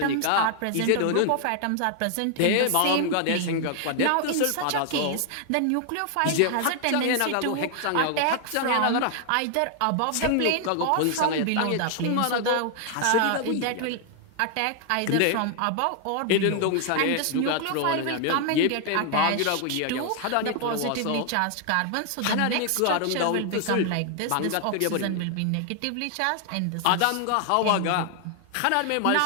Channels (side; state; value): both; different; correlation 0.00